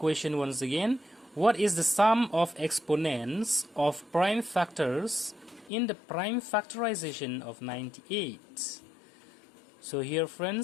once again. What is the sum of exponents of prime factors in the prime factorization of 98? So here,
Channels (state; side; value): drops out; right; at 5.7 s